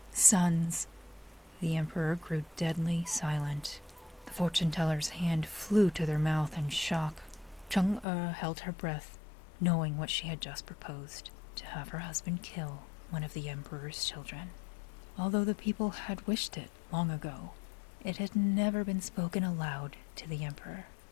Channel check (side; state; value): right; drops out; at 8.1 s